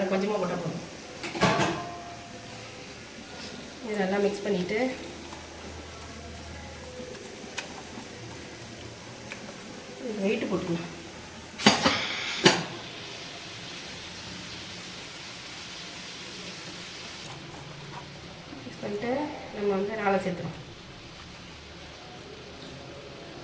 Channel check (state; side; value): identical; both; correlation 1.00